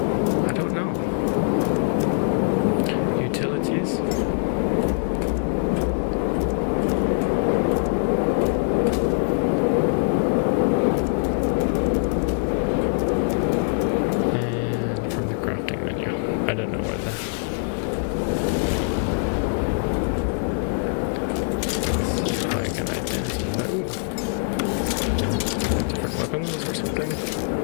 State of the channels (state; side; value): silent; right; 62 dB below the other